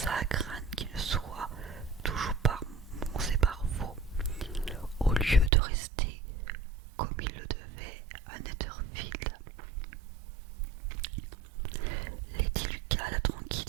comme il le devait à Netherfield. Lady Lucas la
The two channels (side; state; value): left; drops out; at 5.5 s